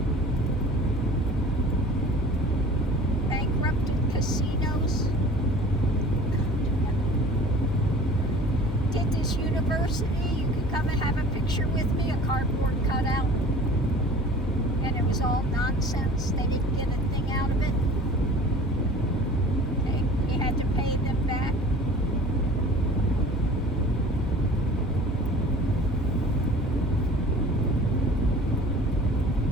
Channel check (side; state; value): both; normal; correlation 0.44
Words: Bankrupted casinos. Did this university. You could come and have a picture with me, a cardboard cutout. And it was all nonsense. They didn't get a thing out of it. He had to pay them back.